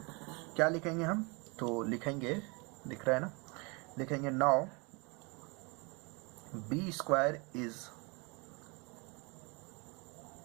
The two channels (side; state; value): left; quieter; 29.9 dB